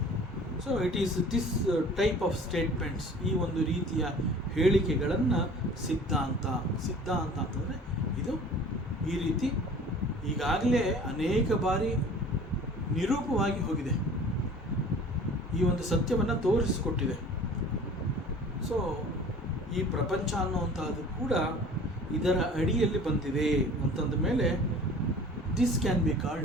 So it is this type of statements, ಈ ಒಂದು ರೀತಿಯ ಹೇಳಿಕೆಗಳನ್ನು ಸಿದ್ಧಾಂತ ಅಂತಂದರೆ ಇದು ಈ ರೀತಿ ಈಗಾಗಲೇ ಅನೇಕ ಬಾರಿ ನಿರೂಪವಾಗಿ ಹೋಗಿದೆ, ಈ ಒಂದು ಸತ್ಯವನ್ನು ತೋರಿಸಿಕೊಟ್ಟಿದೆ. ಸೊ ಈ ಪ್ರಪಂಚ ಅನ್ನುವಂಥದ್ದು ಕೂಡ ಇದರ ಅಡಿಯಲ್ಲಿ ಬಂದಿದೆ ಅಂತಂದ ಮೇಲೆ this can be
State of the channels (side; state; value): both; normal; correlation 0.45